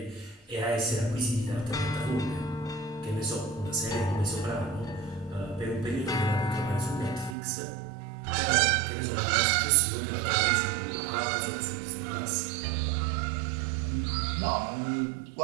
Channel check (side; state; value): left; drops out; at 7.4 s